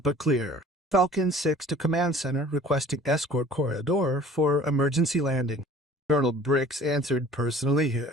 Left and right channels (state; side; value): normal; both; correlation 0.48